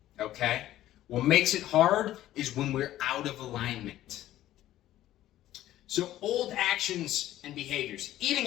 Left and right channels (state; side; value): quieter; right; 13.8 dB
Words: Okay? What makes it hard is when we're out of alignment. So old actions and behaviors.